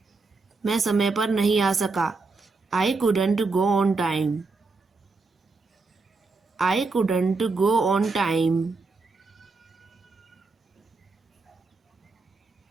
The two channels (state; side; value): quieter; left; 4.0 dB